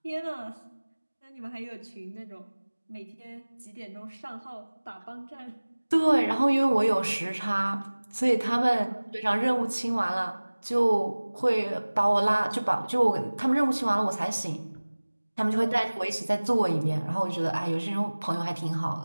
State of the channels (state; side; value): inverted; both; correlation -1.00